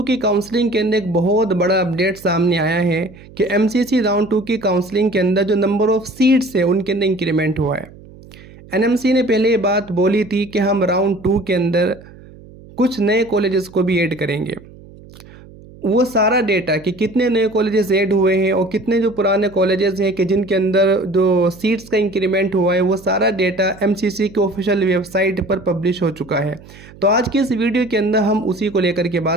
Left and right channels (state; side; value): noise; right; hum, 21 dB below the sound